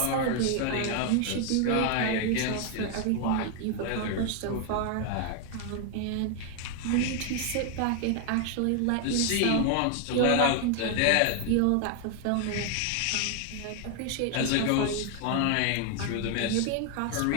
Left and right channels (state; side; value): different; both; correlation 0.00